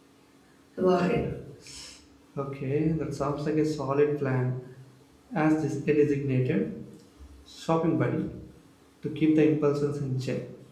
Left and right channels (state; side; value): identical; both; correlation 1.00